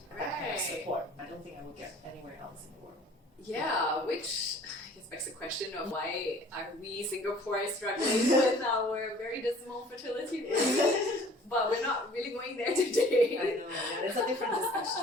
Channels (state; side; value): normal; both; correlation 0.51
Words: That kind of support. I don't think I would get anywhere else in the world. Yeah, which I guess begs the question of why are we Singaporeans struggling with our very dismal fertility rate? But we're not really going there today. I know, yeah, it's a different